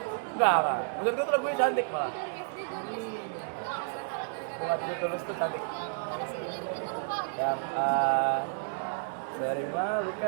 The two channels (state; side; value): silent; left; 57 dB below the other